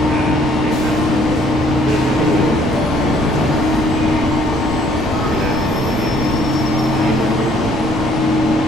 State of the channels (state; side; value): noise; right; rumble, 10 dB below the sound